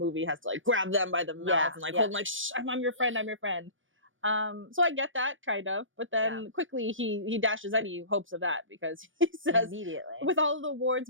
has to like grab them by the mouth and like hold them like, shh, I'm your friend, I'm your friend. So I get that kind of, but then quickly he dashes any hopes of that because he says immediately, with all of the wards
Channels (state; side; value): late; left; 0.57 ms